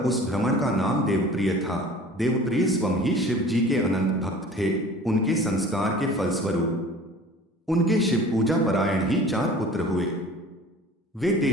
उस ब्राह्मण का नाम देवप्रिय था। देवप्रिय स्वयं ही शिव जी के अनंत भक्त थे। उनके संस्कार के फलस्वरूप उनके शिव पूजा परायण ही 4 पुत्र हुए। वे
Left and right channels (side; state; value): both; normal; correlation 0.44